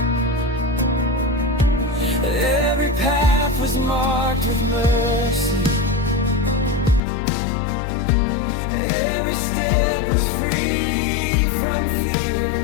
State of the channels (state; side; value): drops out; right; at 7.0 s